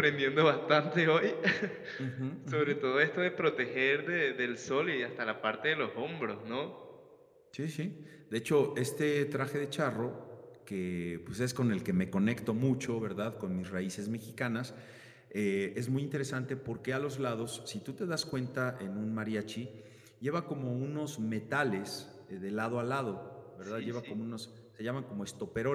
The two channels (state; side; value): identical; both; correlation 1.00